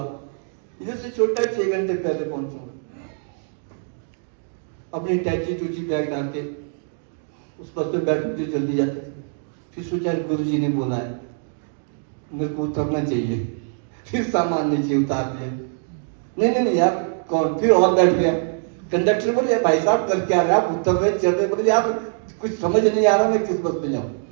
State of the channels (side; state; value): left; silent; 63 dB below the other